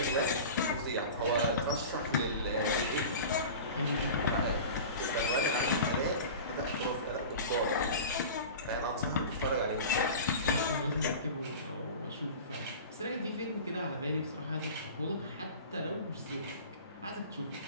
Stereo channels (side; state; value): both; inverted; correlation -0.35